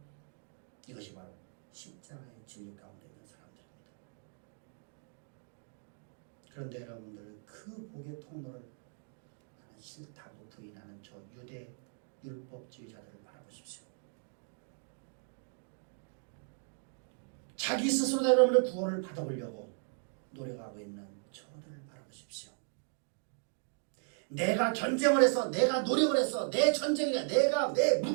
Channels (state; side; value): silent; left; 53 dB below the other